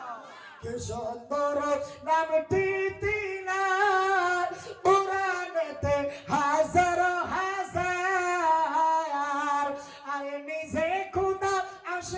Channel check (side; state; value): both; identical; correlation 1.00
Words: কি সুন্দর নামটি তিনা, কোরআনেতে হাজার হাজার, আরে নিজে খুদা